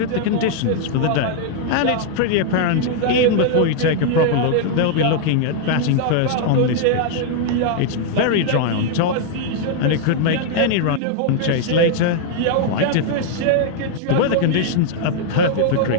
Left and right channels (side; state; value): both; different; correlation 0.00